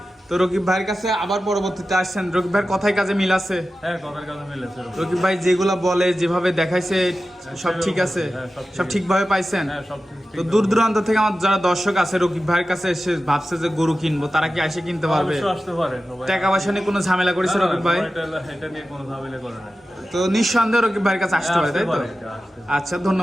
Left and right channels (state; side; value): normal; both; correlation 0.94